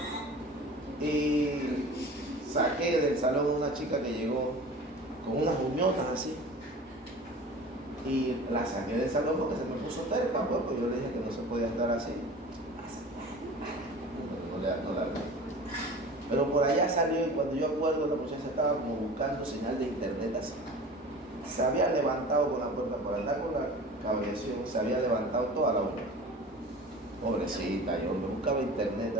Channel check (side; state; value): both; normal; correlation 0.39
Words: y saqué del salón una chica que llegó con unas uñotas así, y la saqué del salón porque se me puso terca, pues yo le dije que no se podía estar así. No la vi. Pero por allá salió, y cuando yo acuerdo, la muchacha estaba como buscando señal de internet así. Se había levantado con la puerta, por andar con la cabreación, se había levantado toda la hora. Pobrecita, yo me buscaba internet